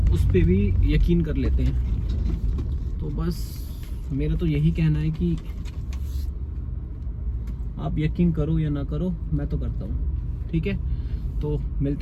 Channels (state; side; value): identical; both; correlation 1.00